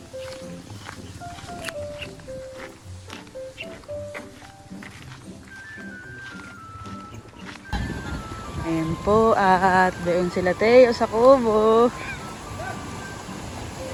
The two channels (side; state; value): both; identical; correlation 1.00